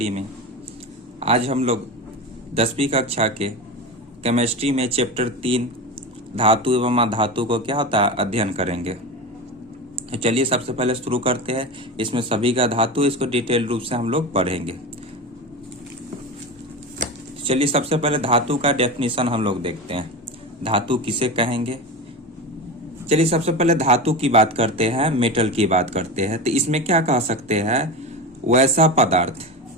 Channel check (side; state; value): both; normal; correlation 0.24